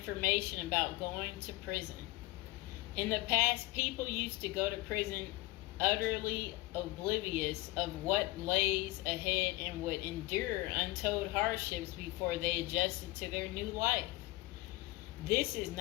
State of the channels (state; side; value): quieter; right; 20.5 dB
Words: about going to prison. In the past, people used to go to prison utterly oblivious of what lays ahead and would endure untold hardships before they adjusted to their new life. This is